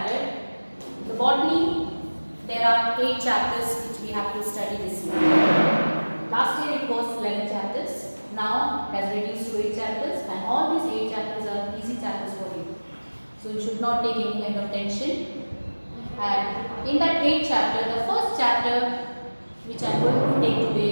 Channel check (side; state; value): both; inverted; correlation -1.00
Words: the botany, there are 8 chapters which we have to study this year. Last year it was 11 chapters. Now it has reduced to 8 chapters, and all these 8 chapters are easy chapters for you. So you should not take any kind of tension. And in that 8th chapter, the first chapter which I am going to take today